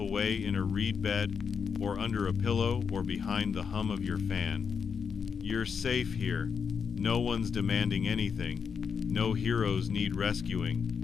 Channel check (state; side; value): quieter; right; 6.3 dB